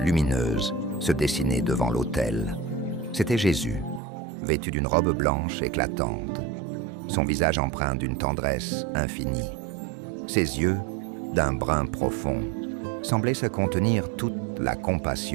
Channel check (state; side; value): drops out; left; at 4.0 s